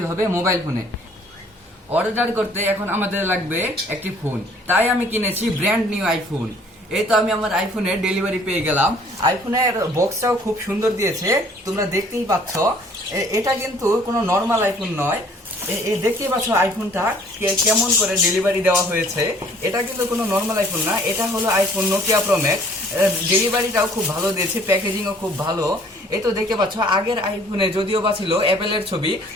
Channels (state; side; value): normal; both; correlation 0.57